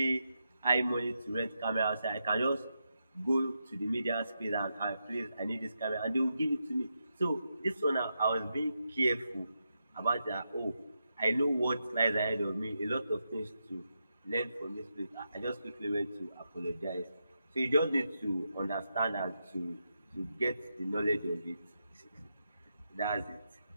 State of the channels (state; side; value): inverted; both; correlation -0.86